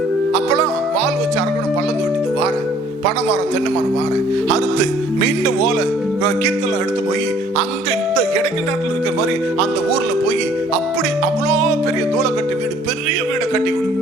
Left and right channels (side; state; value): both; normal; correlation 0.58